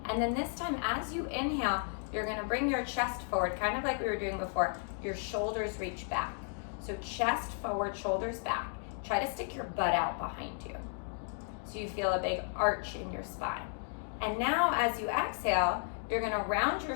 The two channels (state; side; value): silent; right; 55 dB below the other